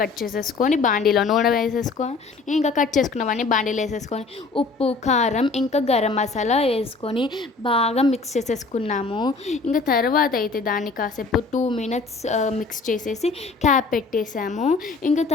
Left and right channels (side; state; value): right; quieter; 4.1 dB